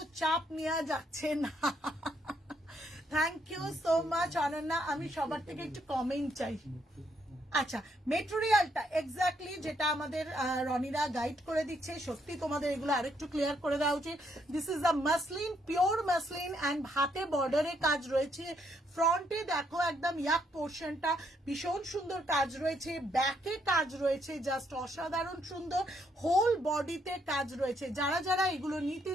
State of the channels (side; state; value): both; normal; correlation 0.73